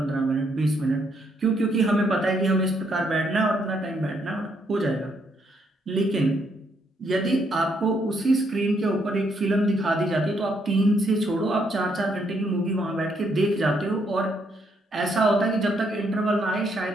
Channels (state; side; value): normal; both; correlation 0.73